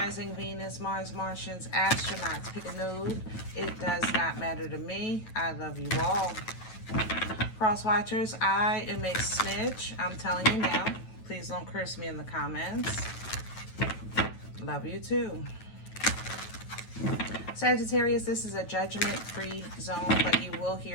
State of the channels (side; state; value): right; late; 9.2 ms